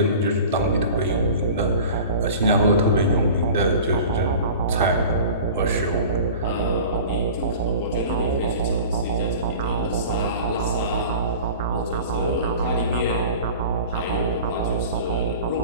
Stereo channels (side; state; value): both; inverted; correlation -0.39